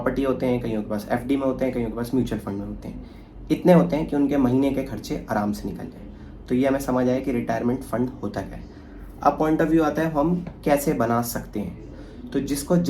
होते हैं, कईयों के पास एफडी में होते हैं, कईयों के पास म्यूचुअल फंड में होते हैं। इतने होते हैं कि उनके महीने के खर्चे आराम से निकल जाए। तो ये हमें समझ आए कि रिटायरमेंट फंड होता क्या है। अब पॉइंट ऑफ व्यू आता है हम कैसे बना सकते हैं। तो जिसको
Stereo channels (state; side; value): identical; both; correlation 1.00